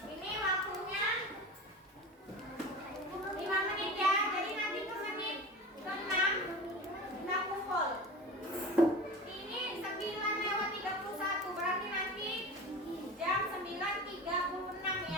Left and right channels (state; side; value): normal; both; correlation 0.32